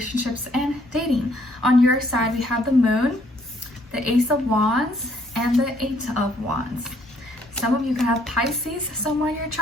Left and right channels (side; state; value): both; normal; correlation 0.66